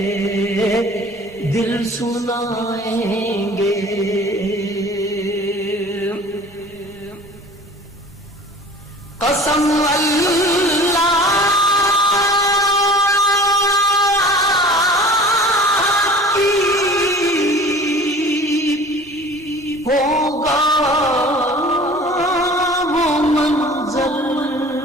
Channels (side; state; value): both; normal; correlation 0.44